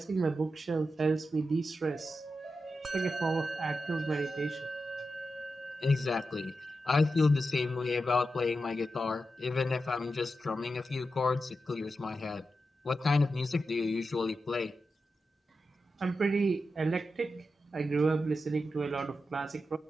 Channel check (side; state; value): both; normal; correlation 0.89